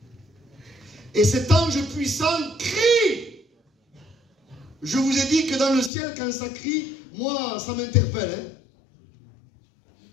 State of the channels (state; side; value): drops out; right; at 5.9 s